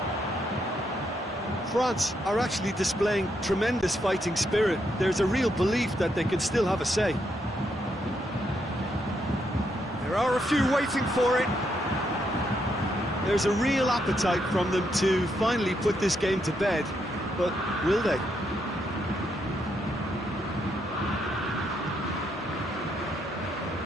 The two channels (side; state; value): both; normal; correlation 0.78